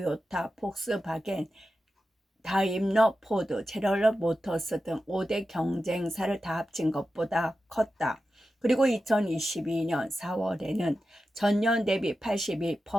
폭스바겐, 다임러, 포드, 제너럴 모터스 등 5대 경쟁사를 다 합친 것보다 컸다. 그리고 2022년 4월에는 전년 대비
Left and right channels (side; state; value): both; normal; correlation 0.92